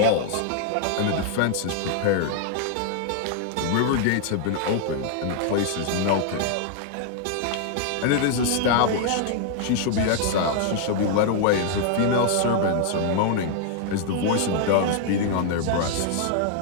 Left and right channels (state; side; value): different; both; correlation 0.00